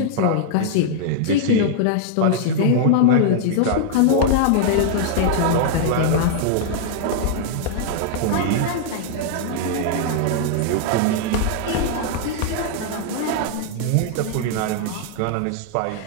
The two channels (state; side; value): different; both; correlation -0.01